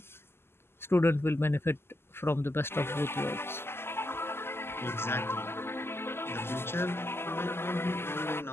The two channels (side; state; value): right; late; 0.12 ms